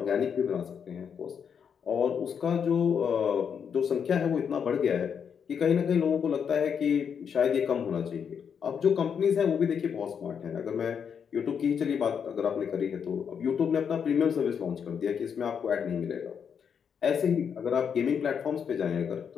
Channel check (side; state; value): right; quieter; 7.2 dB